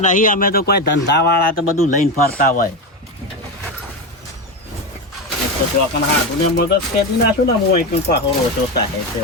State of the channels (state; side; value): normal; both; correlation 0.16